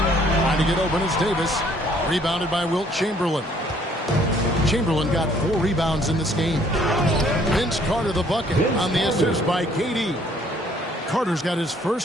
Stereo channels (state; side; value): normal; both; correlation 0.61